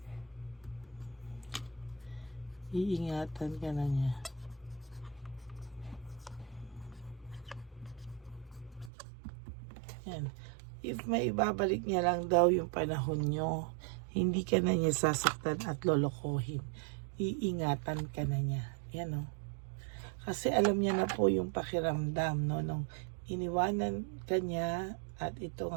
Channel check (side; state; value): left; drops out; at 8.9 s